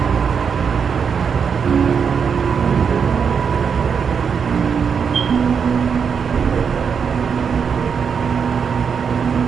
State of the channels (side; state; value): left; quieter; 6.5 dB